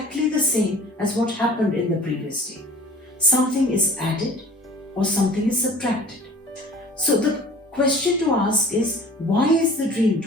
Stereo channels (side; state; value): both; normal; correlation 0.46